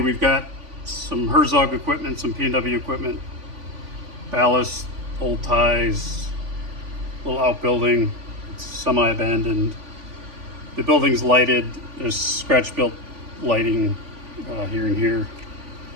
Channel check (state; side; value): late; left; 3.5 ms